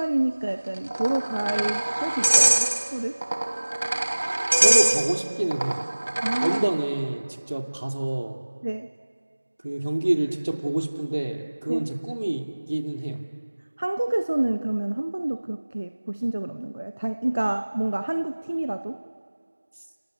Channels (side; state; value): both; inverted; correlation -1.00